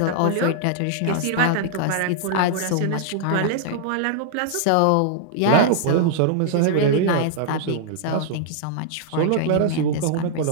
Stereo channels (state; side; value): different; both; correlation -0.01